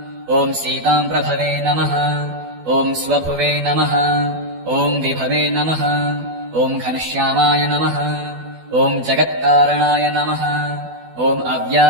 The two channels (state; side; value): late; left; 12 ms